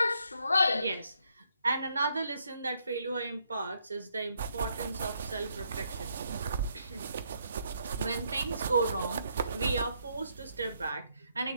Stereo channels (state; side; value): inverted; both; correlation -0.74